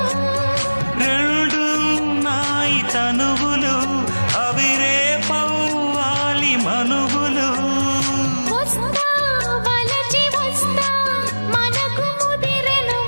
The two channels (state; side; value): inverted; both; correlation -1.00